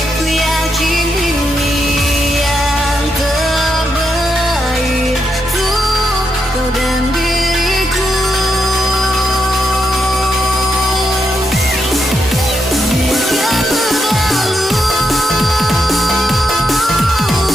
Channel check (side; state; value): both; normal; correlation 0.82